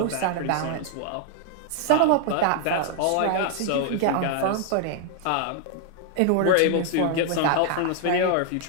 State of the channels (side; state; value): both; different; correlation 0.00